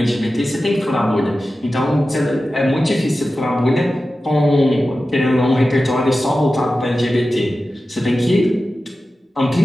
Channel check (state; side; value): normal; both; correlation 0.94